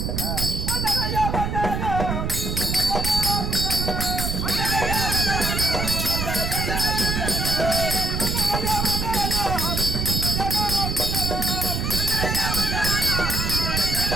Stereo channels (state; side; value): noise; right; rumble, 1 dB below the sound